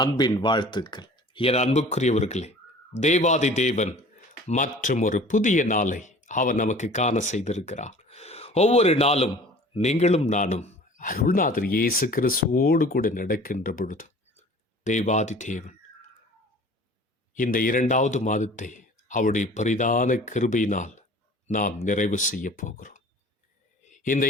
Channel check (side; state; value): both; normal; correlation 0.46